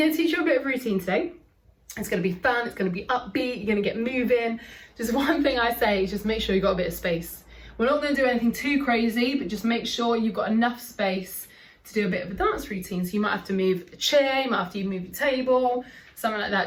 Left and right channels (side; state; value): both; identical; correlation 1.00